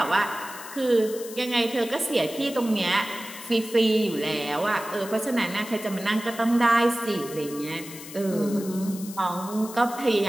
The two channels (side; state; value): left; noise; hiss, 14 dB below the sound